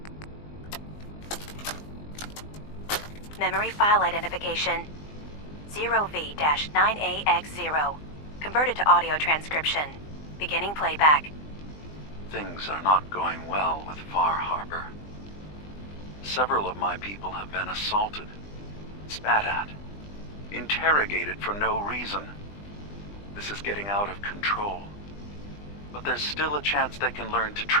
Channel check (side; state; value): right; late; 20 ms